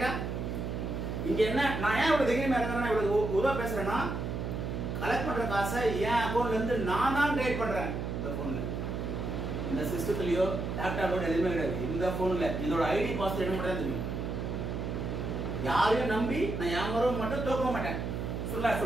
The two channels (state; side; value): noise; right; hum, 3 dB below the sound